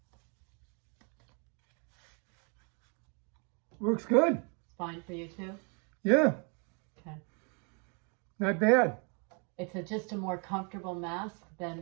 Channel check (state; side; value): quieter; left; 36.7 dB